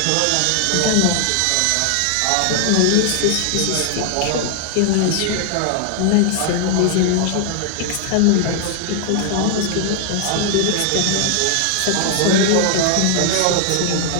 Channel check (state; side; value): different; both; correlation 0.00